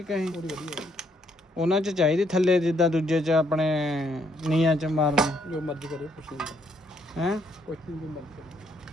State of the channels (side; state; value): both; normal; correlation 0.71